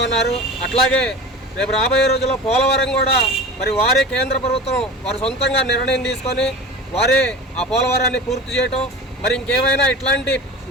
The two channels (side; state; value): both; normal; correlation 0.34